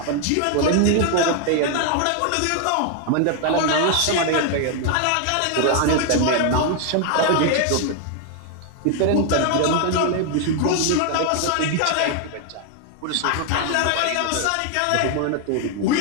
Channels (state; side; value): different; both; correlation 0.00